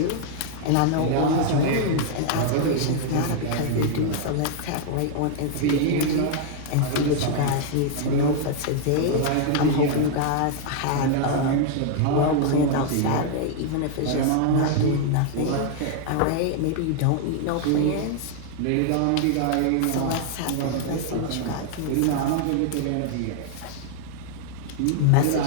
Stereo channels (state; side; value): different; both; correlation 0.00